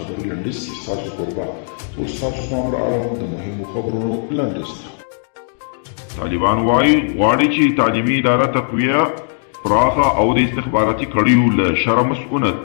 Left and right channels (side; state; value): right; silent; digital silence